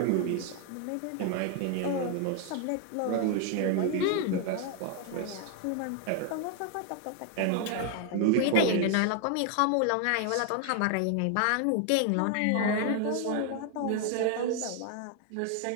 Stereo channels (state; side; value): different; both; correlation 0.00